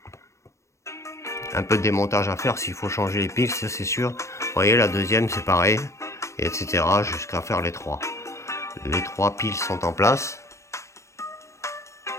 Un peu de démontage à faire s'il faut changer les piles, ça c'est sûr. Vous voyez, la deuxième c'est pareil, et etc. jusqu'à faire les trois. Les trois piles sont en place.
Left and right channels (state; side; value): late; right; 0.14 ms